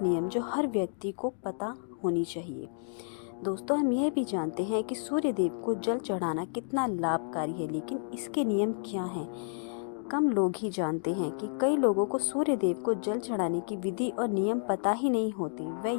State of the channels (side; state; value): right; silent; digital silence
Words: नियम जो हर व्यक्ति को पता होनी चाहिए। दोस्तों, हम यह भी जानते हैं कि सूर्य देव को जल चढ़ाना कितना लाभकारी है, लेकिन इसके नियम क्या हैं? कम लोग ही जानते हैं कि कई लोगों को सूर्य देव को जल चढ़ाने की विधि और नियम पता ही नहीं होती।